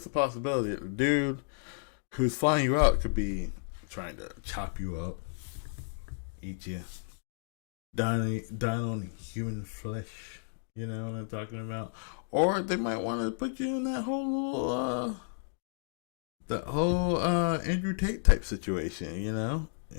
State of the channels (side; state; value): right; silent; digital silence